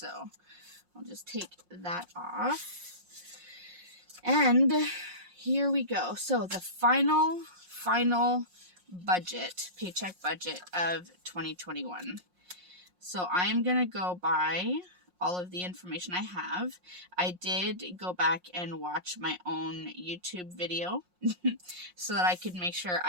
I'll just take that off. And here we go. So the final budget, paycheck budget of 2021. So I'm going to go by all of the information I have. I did go back and watch my own YouTube video so that I could make sure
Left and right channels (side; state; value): left; late; 5.6 ms